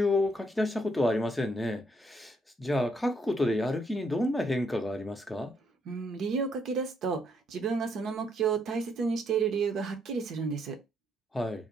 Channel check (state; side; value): normal; both; correlation 0.73